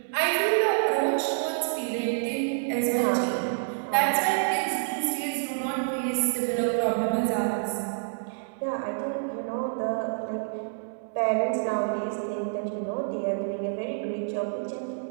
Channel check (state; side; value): silent; left; 60 dB below the other